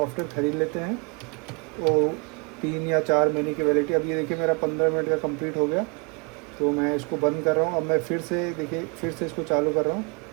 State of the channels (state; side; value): quieter; left; 33.0 dB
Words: ख़रीद लेते हैं तो 3 या 4 महीने की वैलिडिटी। अब ये देखिए मेरा 15 मिनट का कंप्लीट हो गया, तो मैं इसको बंद कर रहा हूँ। अब मैं फिर से देखिए फिर से इसको चालू कर रहा हूँ।